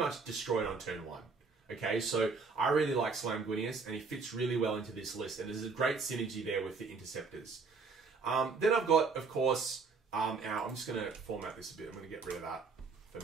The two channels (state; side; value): quieter; left; 4.6 dB